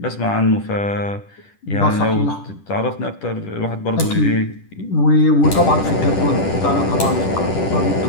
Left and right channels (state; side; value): late; right; 10 ms